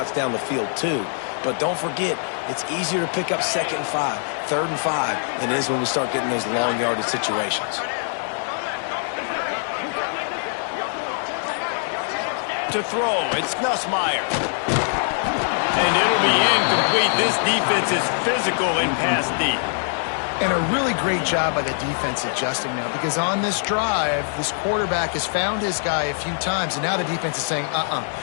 down the field too. But don't forget, it's easier to pick up 2nd and 5, 3rd and 5 than it is when we start getting those long yardage situations. To throw, it's Nussmeier. And it'll be incomplete. This defense is physical in pass deep. And a really great job by the defense adjusting now, because on this drive, this quarterback has found his guy a few times, and now the defense is saying,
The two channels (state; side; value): silent; right; digital silence